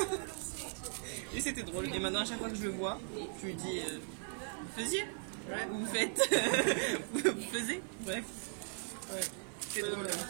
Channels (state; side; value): silent; left; 52 dB below the other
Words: Et c'était drôle. Et maintenant, à chaque fois que je le vois, je lui dis vous faisiez, vous faites, vous faisiez, bref. Ouais. C'est drôle.